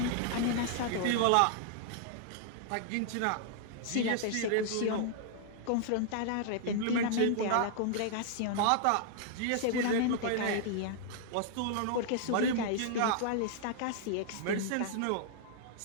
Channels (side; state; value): both; different; correlation -0.01